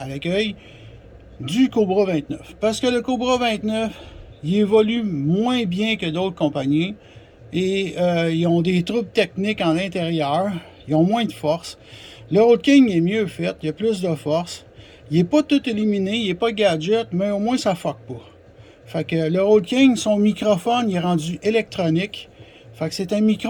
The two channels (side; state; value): both; identical; correlation 1.00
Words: l'accueil, du Cobra 29. Parce que le Cobra 29, il évolue moins bien que d'autres compagnies et ils ont des troubles techniques en intérieur. Ils ont moins de force. Le Road King est mieux fait, il a plus de force. Il n'est pas tout éliminé, il n'est pas gadget, mais au moins ça fuck pas. Fait que le Road King, son microphone, il est rendu électronique. Fait que c'est un